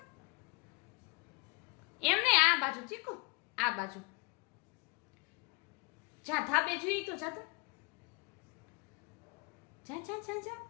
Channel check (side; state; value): right; quieter; 28.8 dB